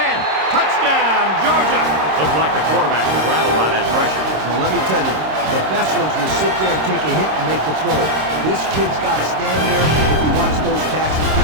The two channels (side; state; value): left; late; 26 ms